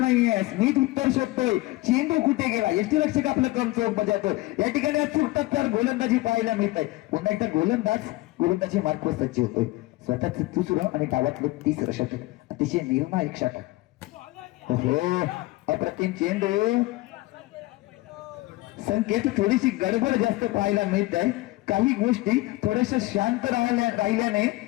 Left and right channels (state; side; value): quieter; right; 20.0 dB